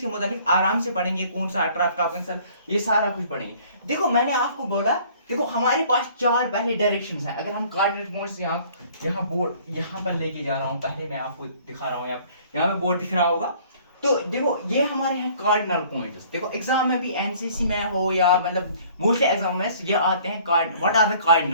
मुतालिक आराम से पढ़ेंगे, कौन सा ट्रैफिक ऑफ कैंसर, ये सारा कुछ पढ़ेंगे। देखो मैंने आपको बोला, देखो हमारे पास चार पहले डायरेक्शंस हैं। अगर हम कोऑर्डिनेट पॉइंट्स यहाँ बोर्ड यहाँ पर लेके जा रहा हूँ, पहले मैं आपको दिखा रहा हूँ, यहाँ पे बोर्ड दिख रहा होगा। तो देखो ये हमारे हैं कार्डिनल पॉइंट्स। देखो एग्जाम में भी एनसीसी में हो या मतलब मोस्टली एग्जाम में ये आते हैं, what are the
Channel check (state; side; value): inverted; both; correlation -0.55